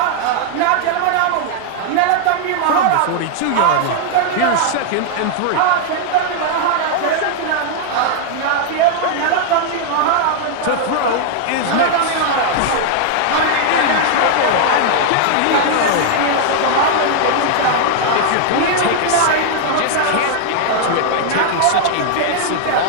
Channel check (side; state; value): both; different; correlation 0.00